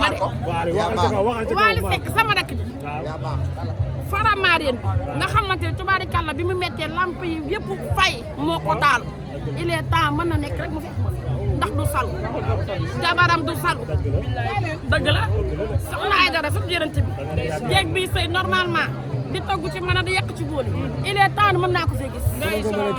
ma de. waxal ca kaw waxal ca kaw. Waly Seck sama rakk ji. Faramareen nga xamante ne tubaari kan la bi mu méttee lamp yi yëpp fay moo ko taal il est temps mën na nekk rek mu fekk ma fi ndax du salu jabaram du salu dëgg la soxna ay dara su jërënte bi jéeg bi sëy normalement di togg ci mën a di yàq ci bool yi il est temps mën naa ko fee gis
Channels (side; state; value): both; identical; correlation 1.00